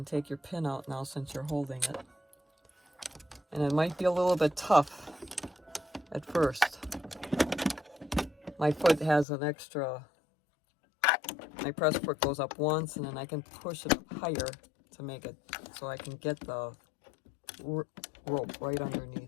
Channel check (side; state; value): right; drops out; at 9.2 s